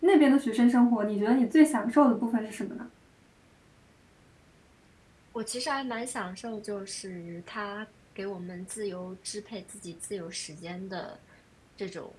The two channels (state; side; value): identical; both; correlation 1.00